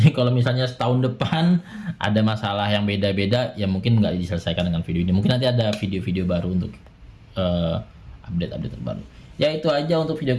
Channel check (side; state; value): both; identical; correlation 1.00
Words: kalau misalnya setahun depan ada masalah yang beda-beda ya mungkin nggak diselesaikan dengan video ini. Mungkin nanti ada video-video baru untuk update-update terbaru. Ya itu aja untuk video